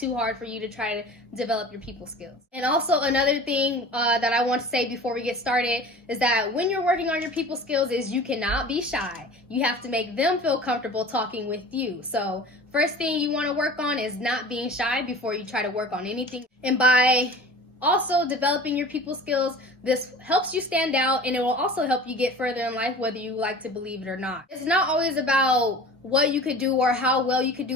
hard for you to try to develop your people skills. And also another thing that I want to say before we get started is that when you're working on your people skills is you cannot be shy. You have to make them feel comfortable talking with you. So first thing you want to work on is not being shy before you try to work on anything. And by also developing your people skills, this helps you stand out, and it will also help you get further in life, whether you like to believe it or not. It's not always about what you could do or how well you could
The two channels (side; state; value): both; normal; correlation 0.40